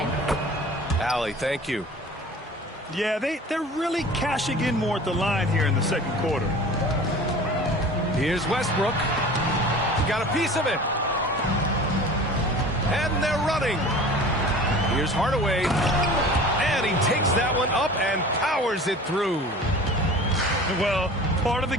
Allie, thank you. Yeah, they're really cashing in more at the line here in the second quarter. Here's Westbrook. He got a piece of it. And they're running. Here's Hardaway. And he takes that one up and powers it through. Well, part of the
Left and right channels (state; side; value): normal; both; correlation 0.41